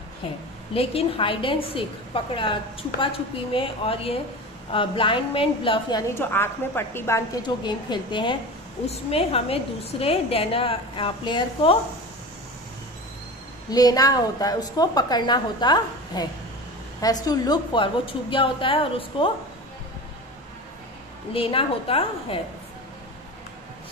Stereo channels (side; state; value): both; normal; correlation 0.31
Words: है। लेकिन हाइड एंड सीक, पकड़ा छुपा छुपी में, और ये ब्लाइंड मैन ब्लफ यानी जो आंख में पट्टी बांध के जो गेम खेलते हैं, उसमें हमें दूसरे प्लेयर को लेना होता है, उसको पकड़ना होता है। हैज टू लुक फॉर, वो छुप गया होता है और उसको लेना होता है।